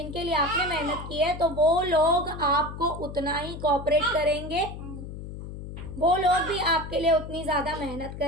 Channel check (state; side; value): noise; left; hum, 10 dB below the sound